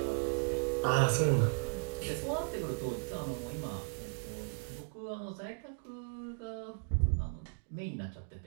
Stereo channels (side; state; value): left; silent; digital silence